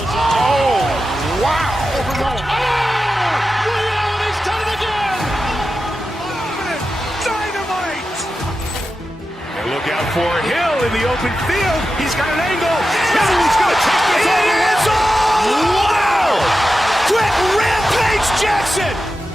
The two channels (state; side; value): normal; both; correlation 0.92